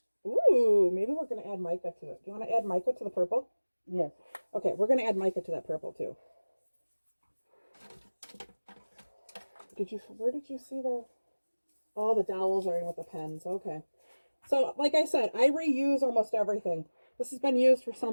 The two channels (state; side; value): inverted; both; correlation -1.00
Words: Ooh, maybe we're going to add mica to it. Do you want to add mica to the purple? Yes. Okay, we're going to add mica to that purple too. Where did you see the... Oh, the dowels are in with the pens. Okay. So, like I said, I reuse almost everything. This has been used for